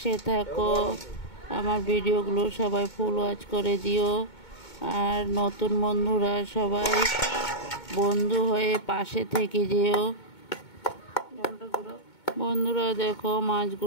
থাকো। আমার ভিডিওগুলো সবাই ফুল ওয়াচ করে দিও। আর নতুন বন্ধুরা সবাই বন্ধু হয়ে পাশে থেকে যেও। বন্ধুরা দেখো,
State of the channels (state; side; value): late; right; 2.2 ms